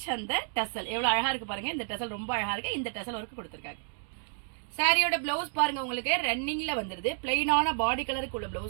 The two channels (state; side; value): silent; left; 57 dB below the other